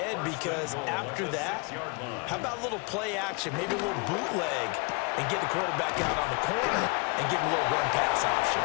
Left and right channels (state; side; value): quieter; right; 30.8 dB